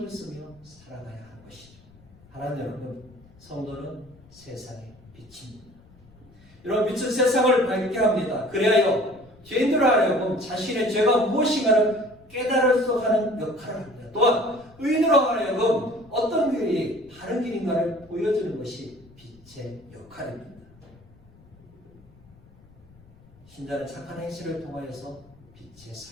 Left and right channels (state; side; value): noise; left; rumble, 26 dB below the sound